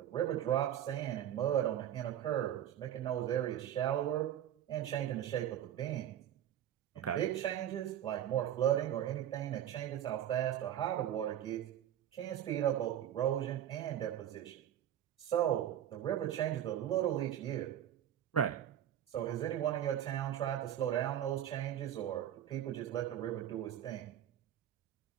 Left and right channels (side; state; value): left; quieter; 11.1 dB